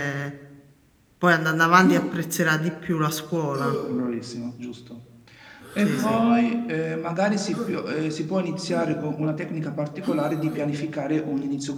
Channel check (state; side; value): identical; both; correlation 1.00